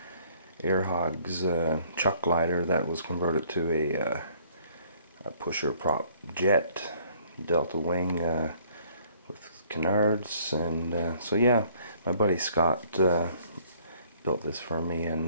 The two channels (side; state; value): both; inverted; correlation -0.61